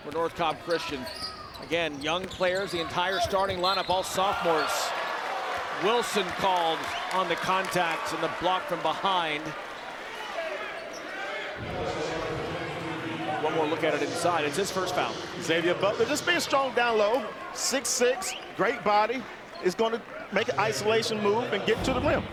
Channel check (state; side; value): identical; both; correlation 1.00